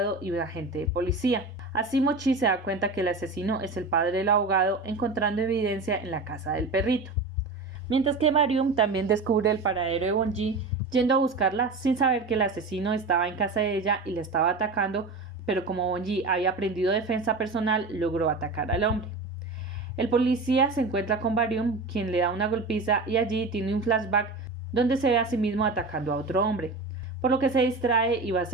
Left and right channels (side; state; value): left; quieter; 3.6 dB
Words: y un agente de policía. Así Mochi se da cuenta que el asesino es el padre del abogado, encontrando evidencia en la casa del perrito. Mientras que Barium también descubre el paradero de Bonji, yendo a buscarla sin saber que el asesino estaba en casa de ella y le estaba atacando, pero como Bonji había aprendido defensa personal, logró atacar al hombre. El policía se encuentra con Barium, quien le da una golpiza y allí tiene un flashback donde se ve a sí mismo atacando a otro hombre, por lo que se distrae y va a